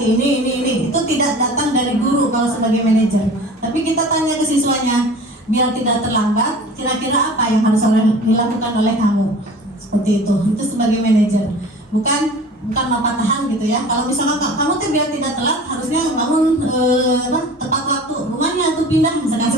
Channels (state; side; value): normal; both; correlation 0.42